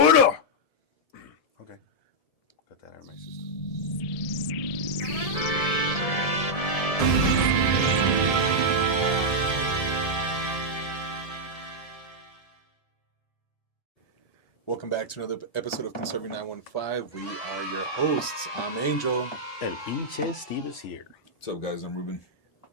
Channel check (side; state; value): right; late; 1.7 ms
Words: Okay. Got that out of my system. Welcome back to another episode of Conserving 915. We are your hosts. I'm Angel. El pinche Steve is here. What's up, guys? I'm Ruben.